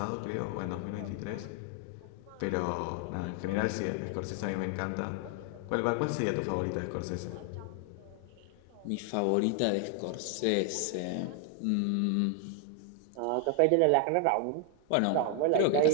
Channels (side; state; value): both; different; correlation 0.00